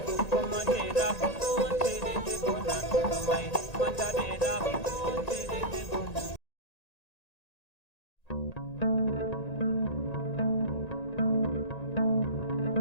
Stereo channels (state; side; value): late; right; 1.9 ms